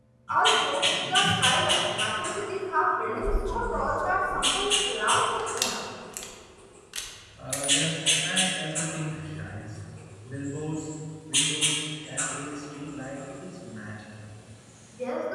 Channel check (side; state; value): both; identical; correlation 1.00